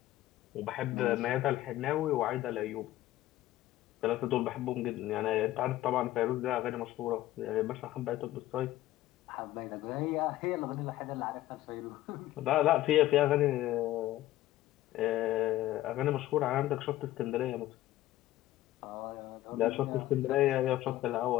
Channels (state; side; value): quieter; right; 15.1 dB